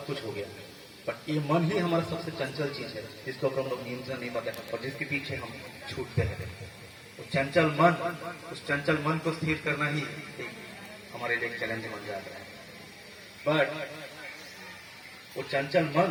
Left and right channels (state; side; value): identical; both; correlation 1.00